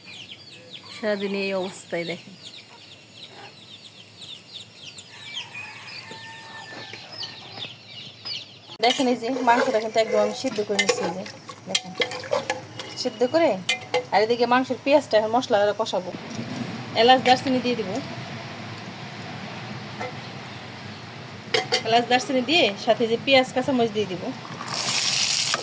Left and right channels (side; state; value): both; identical; correlation 1.00